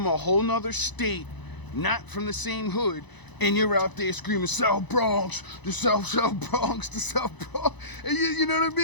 a whole nother state, not from the same hood, and you're out there screaming, South Bronx, the South Bronx, the South Bronx. And you know what I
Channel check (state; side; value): late; right; 1.0 ms